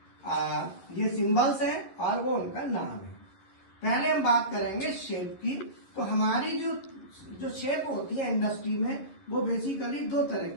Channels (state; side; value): late; right; 11 ms